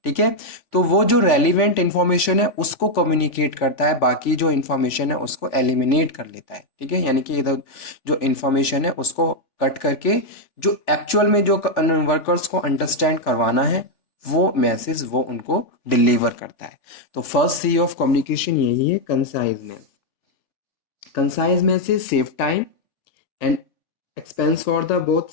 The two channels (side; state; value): right; late; 3.4 ms